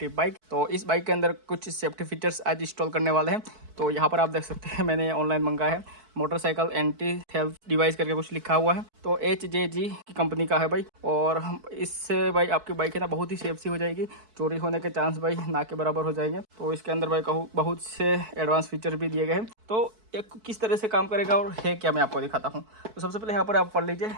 बाइक। तो इस बाइक के अंदर कुछ सेफ्टी फीचर्स आज इंस्टॉल करने वाले हैं। तो यहाँ पर आप देख सकते हैं मैंने ऑनलाइन मंगाया है, मोटरसाइकिल एंटी थेफ्ट डिवाइस करके कुछ लिखा हुआ है। तो HJG की कंपनी का है भाई। और इससे भाई आपकी बाइक है ना बहुत ही सेफ सी हो जाएगी, चोरी होने के चांस भाई ना के बराबर हो जाएंगे। तो इसके अंदर भाई कहूँ बहुत से एडवांस फीचर भी दिए गए हैं। तो ये किस तरह से काम करेगा और है क्या, मैं आपको दिखाता हूँ। तो सबसे पहले यहाँ पर आप पढ़ लीजिए,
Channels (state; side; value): late; left; 4.6 ms